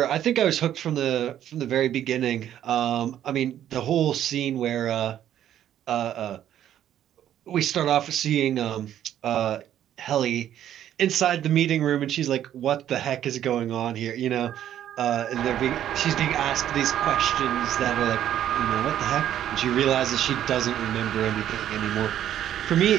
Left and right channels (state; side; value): quieter; left; 11.1 dB